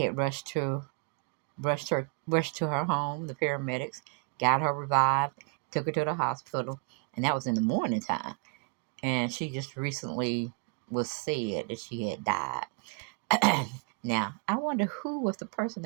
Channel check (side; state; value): left; quieter; 36.7 dB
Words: rushed to her home. The paramedics got her revived, took her to the hospital, and that was in the morning time. And she just recently was said that she had died. Now, I wonder who was the person